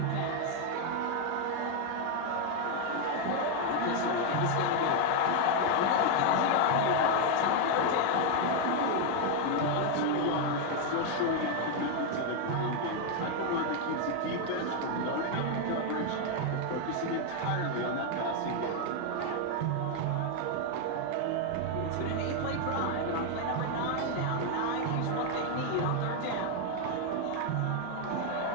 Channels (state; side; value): different; both; correlation 0.01